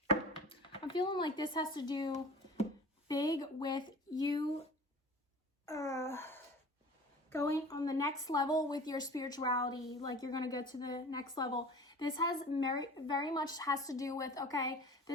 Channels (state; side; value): normal; both; correlation 0.41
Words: I'm feeling like this has to do big with you going on the next level with your spirituality. Like you're going to go to the next level. This has very much has to do with, okay,